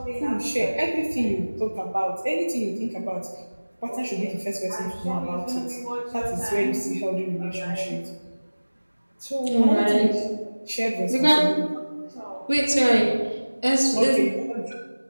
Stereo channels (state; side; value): inverted; both; correlation -1.00